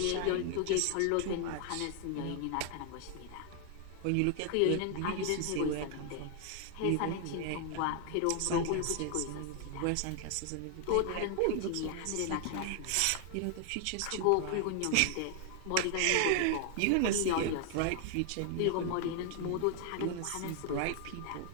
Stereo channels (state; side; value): different; both; correlation 0.00